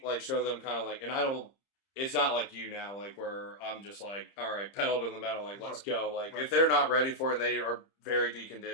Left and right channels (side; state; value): right; late; 30 ms